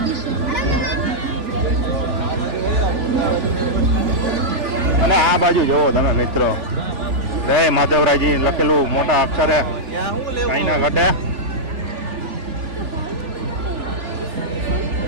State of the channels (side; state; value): left; late; 3.4 ms